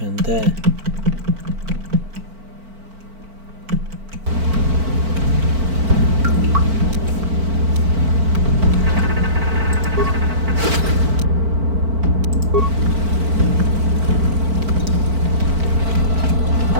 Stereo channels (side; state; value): left; late; 4.5 ms